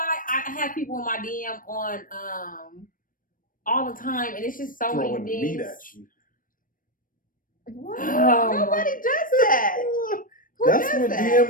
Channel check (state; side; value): late; right; 0.40 ms